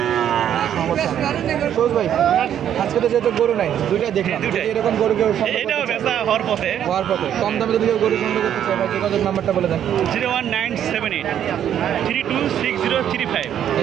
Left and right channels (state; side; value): quieter; left; 9.9 dB